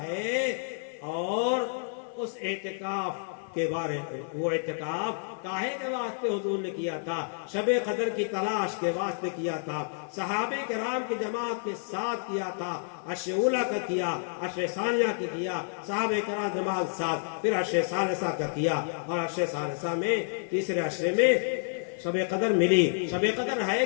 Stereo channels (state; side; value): silent; right; 58 dB below the other